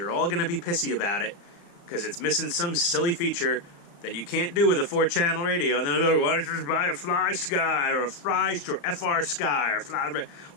all going to be pissy about it, because it's missing some silly feature that you can't do with a 4-channel radio. And then they'll go, why don't you just buy a Fly Sky, or a Fry, or FR Sky, or Fly,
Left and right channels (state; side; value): late; right; 35 ms